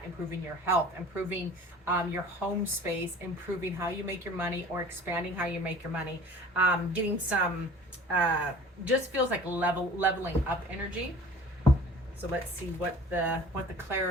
improving your health, improving your home space, improving how you make your money, or expanding how you make your money, getting some, just feels like leveling up energy. So let's see what the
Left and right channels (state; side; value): normal; both; correlation 0.45